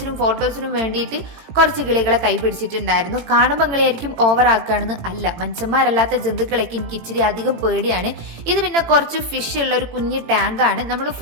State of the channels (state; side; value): late; left; 18 ms